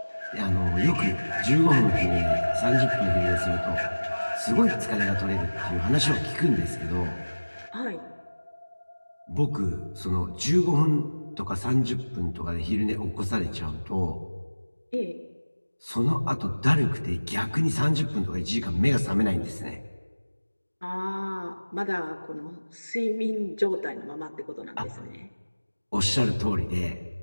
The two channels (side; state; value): both; inverted; correlation -1.00